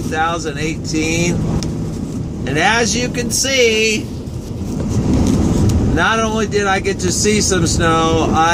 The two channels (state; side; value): identical; both; correlation 1.00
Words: And as you can see, not only did I get to see some snow,